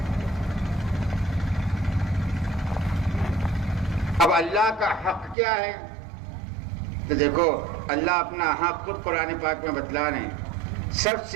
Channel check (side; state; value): left; drops out; at 5.4 s